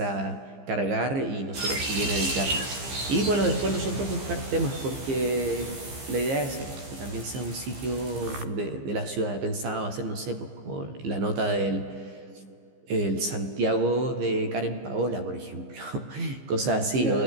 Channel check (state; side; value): late; left; 15 ms